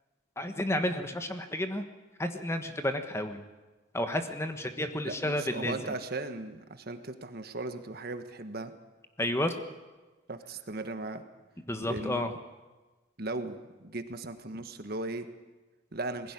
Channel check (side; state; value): both; normal; correlation 0.45